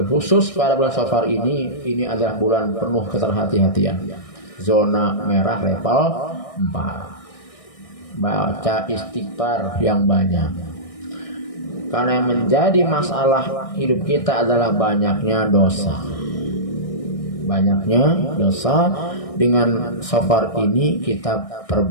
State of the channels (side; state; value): right; late; 1.6 ms